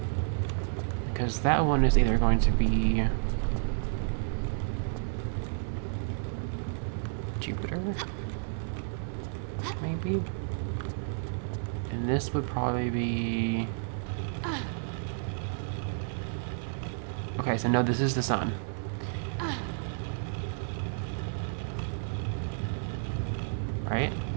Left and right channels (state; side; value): silent; left; digital silence